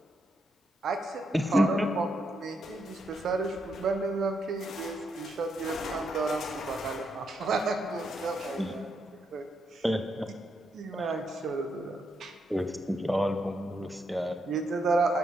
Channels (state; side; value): normal; both; correlation 0.80